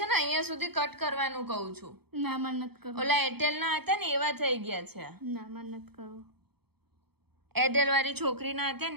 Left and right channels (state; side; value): late; left; 0.97 ms